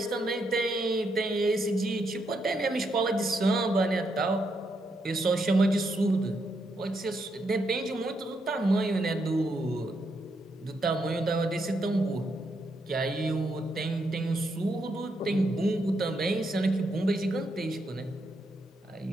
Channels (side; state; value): both; normal; correlation 0.79